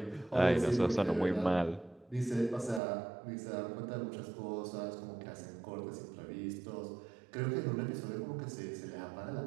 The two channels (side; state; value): left; drops out; at 2.8 s